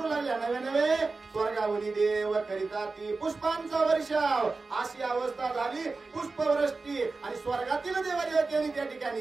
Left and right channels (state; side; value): quieter; left; 3.9 dB